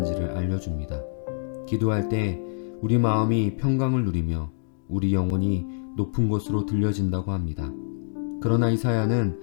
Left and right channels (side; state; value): right; silent; 61 dB below the other